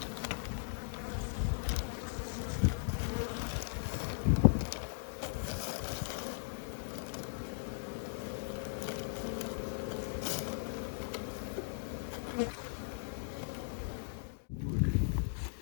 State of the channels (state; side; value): silent; right; digital silence